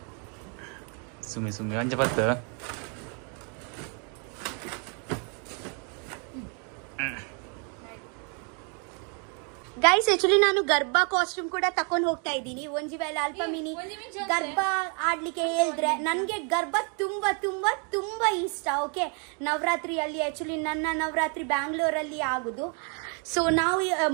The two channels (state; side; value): quieter; left; 38.0 dB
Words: ಸುಮ್ಮಿ ಒಂಜ ಪತ್ತು ಗೈಸ್ ಆಕ್ಚುಲಿ ನಾನು ಗರ್ಭ ಕಾಸ್ಟ್ಯೂಮ್ ಕೂಡ ತಕೊಂಡ್ ಹೋಗ್ತಾ ಇದ್ದೀನಿ. ಒಂಜಿ ವೇಳೆ ಅಲ್ಪ ಮಿನಿ ಗರ್ಭ ಆಡ್ಲಿಕ್ಕೆ ಹೇಳಿದ್ರೆ ನನ್ಗೆ ಗರ್ಭ ತುಂಬಾ ತುಂಬಾ ತುಂಬಾ ಇಷ್ಟ. ಓಕೆ, ನವರಾತ್ರಿಯಲ್ಲಿ ಆಕ್ಚುಲಿ ನನ್ನ ನವರಾತ್ರಿ ಬ್ಯಾಂಗ್ಳೂರಲ್ಲಿ ಆಗುದು. ಸೊ ನಾವು